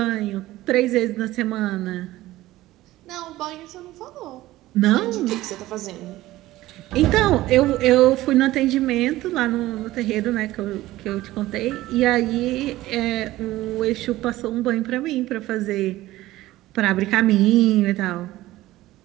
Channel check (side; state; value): left; quieter; 16.5 dB